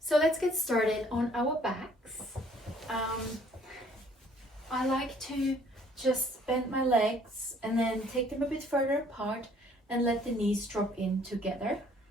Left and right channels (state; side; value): normal; both; correlation 0.59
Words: So let's get started on our backs. I like to just bend my legs and then take them a bit further apart and let the knees drop in together.